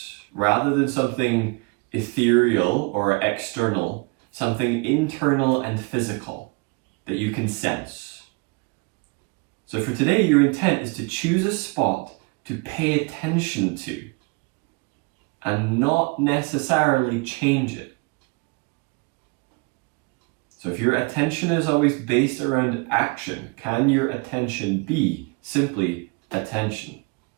rather than something ethereal or external, something internal and physical that you can sense. So for today, your intent is to choose a spot to pay attention to and not necessarily change it. So if your attention is always based around action, can your attention be simply attention?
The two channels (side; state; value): left; quieter; 30.2 dB